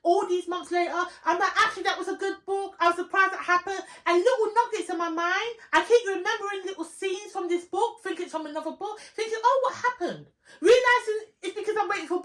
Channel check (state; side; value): identical; both; correlation 1.00